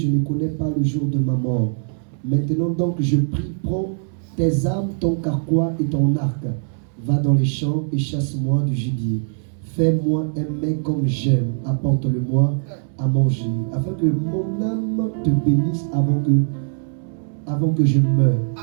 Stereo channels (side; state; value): left; silent; 65 dB below the other